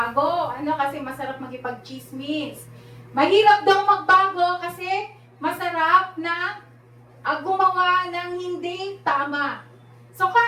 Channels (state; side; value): identical; both; correlation 1.00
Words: Kasi masarap magipag-chismis. Mahirap daw magbago kasi masarap na gumawa ng hindi tama. So